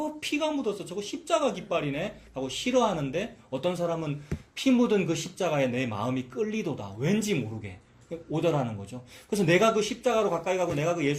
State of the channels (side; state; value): both; identical; correlation 1.00